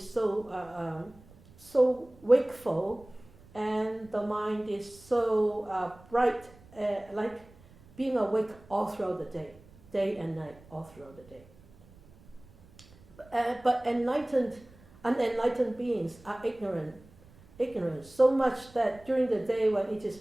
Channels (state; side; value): noise; right; rumble, 25 dB below the sound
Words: so wakeful, and the mind is so bright, like being awake all throughout the day and night, all throughout the day. But unenlightened beings are ignorant, so much that during the day when it is